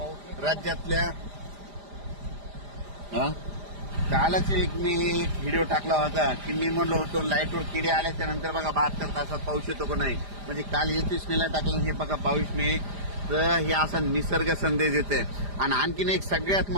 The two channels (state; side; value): late; left; 5.0 ms